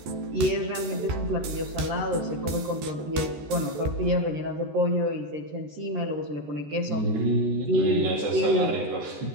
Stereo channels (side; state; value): left; late; 14 ms